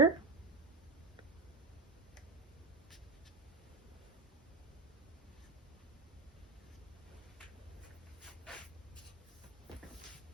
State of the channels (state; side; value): quieter; left; 3.7 dB